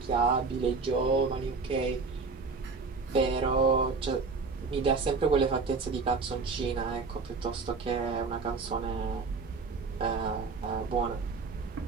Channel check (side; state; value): left; quieter; 4.4 dB